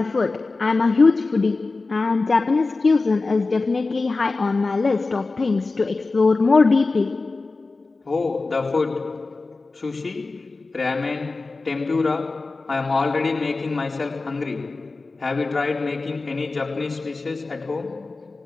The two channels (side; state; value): right; quieter; 3.7 dB